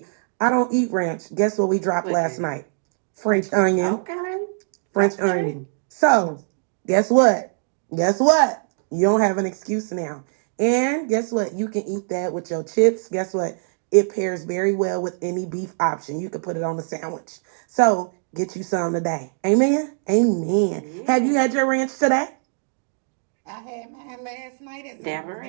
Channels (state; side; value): silent; left; digital silence